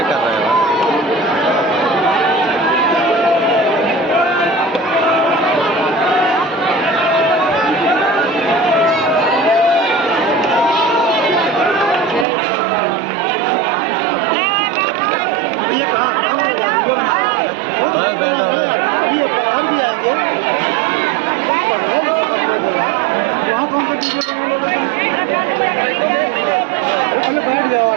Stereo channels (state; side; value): drops out; left; at 12.2 s